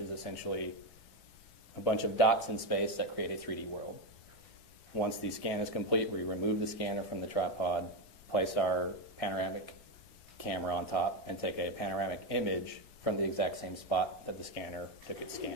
is essentially a bunch of dots in space that create a 3D world. Once the scan is complete, we remove the scanner from the tripod, place our panoramic camera on top, and take a panoramic image from the exact same spot that the scanner took its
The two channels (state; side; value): normal; both; correlation 0.11